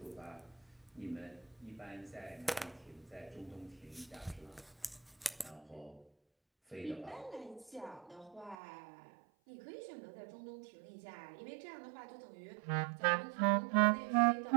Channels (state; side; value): drops out; left; at 8.6 s